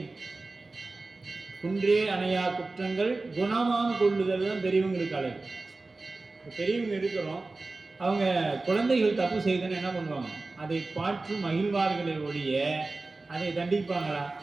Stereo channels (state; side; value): quieter; left; 3.4 dB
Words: குன்றே அணையா குற்றங்கள் குணமான் கொள்ளுதல் தான் பெரியவங்களுக்கு அழகு. பெரியவங்க இருக்கிறோம், அவங்க குழந்தைகள் தப்பு செய்துன்னு என்ன பண்ணுவாங்க, அதை பாற்று மகிழ்வார்களை ஒழிய அதை தண்டிப்பாங்களா?